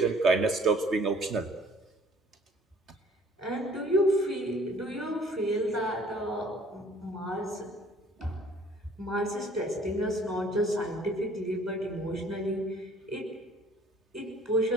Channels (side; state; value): both; normal; correlation 0.56